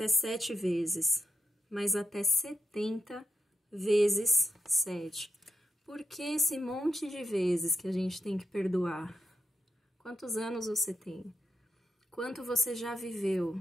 7 vezes, mas até 70 vezes 7. Por que esse monte de vezes que a gente tem que perdoar? Quantos anos você tem? Quanto você já viveu?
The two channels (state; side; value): normal; both; correlation 0.85